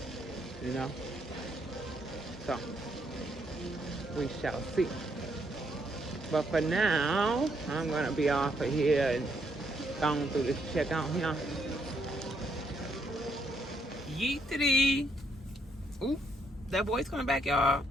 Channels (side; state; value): both; normal; correlation 0.75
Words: you know? So, we shall see. But for now, I'm gonna be off of here and going through this checkout here. Yeetity. Oop, that boy's coming back, y'all.